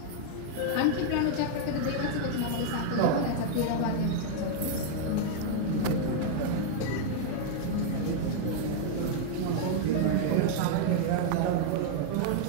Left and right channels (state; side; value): different; both; correlation -0.01